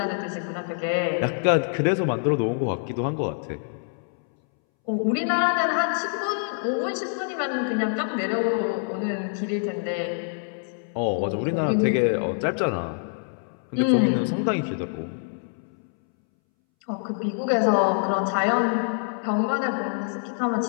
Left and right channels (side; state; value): right; silent; 61 dB below the other